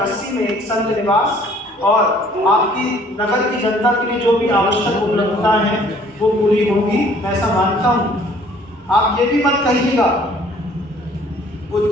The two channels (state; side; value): normal; both; correlation 0.57